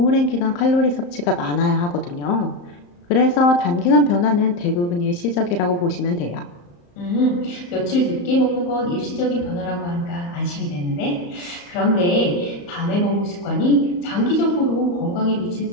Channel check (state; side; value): late; right; 34 ms